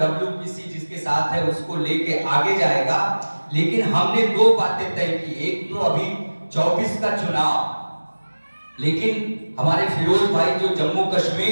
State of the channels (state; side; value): inverted; both; correlation -1.00